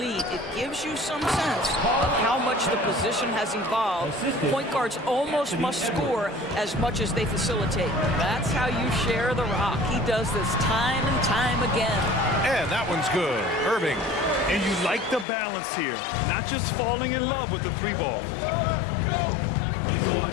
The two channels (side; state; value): right; drops out; at 15.2 s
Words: It gives you some sense of how much the position has evolved. Point guards almost must score as much as they facilitate. That's how you share the rock. He does this time and time again. And that one's good. Irving. And you like the balance here, not just falling in love with the three ball.